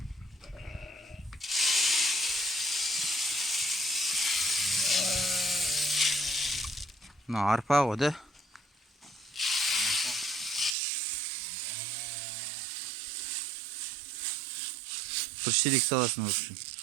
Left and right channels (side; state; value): left; drops out; at 10.8 s